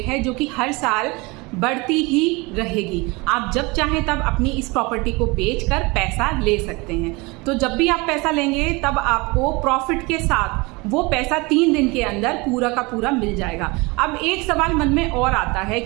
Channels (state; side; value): quieter; left; 25.5 dB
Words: है जो कि हर साल बढ़ती ही रहेगी। आप जब चाहें तब अपनी इस प्रॉपर्टी को बेचकर पैसा ले सकते हैं। तो जब भी आप पैसा लेंगे तब आपको प्रॉफिट के साथ वो पैसा 3 दिन के अंदर पूरा का पूरा मिल जाएगा। अब एक सवाल मन में और आता है